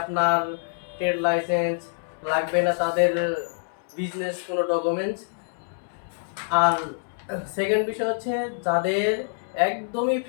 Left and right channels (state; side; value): silent; right; digital silence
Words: আপনার ট্রেড লাইসেন্স, লাগবে না তাদের বিজনেস কোনো ডকুমেন্টস। আর সেকেন্ড বিষয় হচ্ছে যাদের একদমই